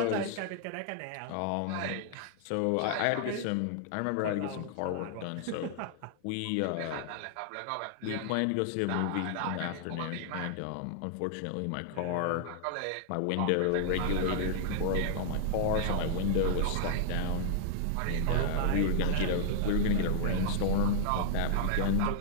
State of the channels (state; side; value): different; both; correlation -0.01